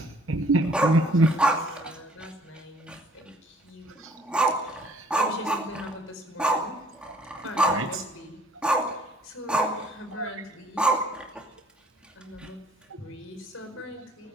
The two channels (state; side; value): normal; both; correlation 0.59